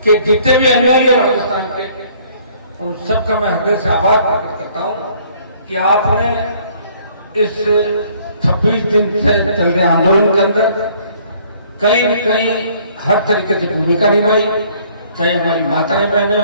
के जितने भी अनुयायी हैं राजस्थान के, उन सबका मैं हृदय से आभार प्रकट करता हूं कि आपने इस 26 दिन से चल रहे आंदोलन के अंदर कहीं न कहीं हर तरीके से भूमिका निभाई, चाहे हमारी माताएं बहनें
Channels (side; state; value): both; inverted; correlation -0.60